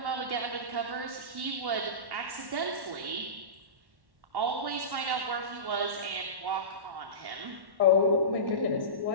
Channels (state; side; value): late; left; 1.1 ms